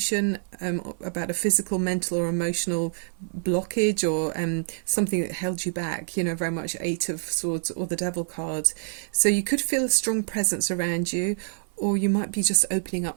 about a physical, mental or emotional blockage, or something that held you back, you know, very much Eight of Swords or the Devil card. So you could feel a strong presence around you, or you might be just opening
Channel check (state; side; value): silent; left; 56 dB below the other